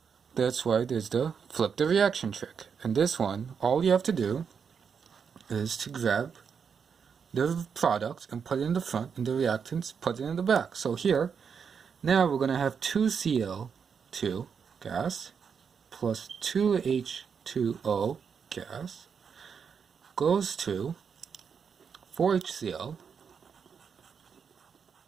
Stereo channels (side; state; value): left; quieter; 6.5 dB